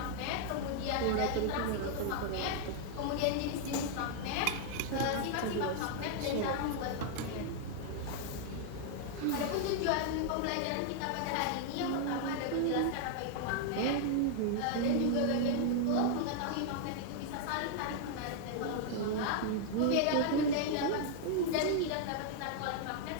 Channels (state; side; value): different; both; correlation 0.00